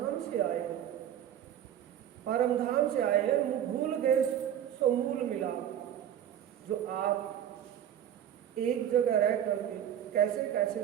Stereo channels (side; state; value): left; quieter; 10.2 dB